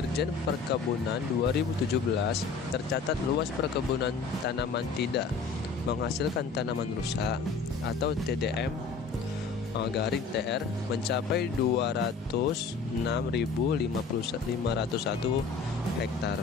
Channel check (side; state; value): right; quieter; 4.9 dB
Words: Perkebunan 2017, tercatat luas perkebunan tanaman tidak menghasilkan tanaman rusak atau TDM TR mencapai 206.501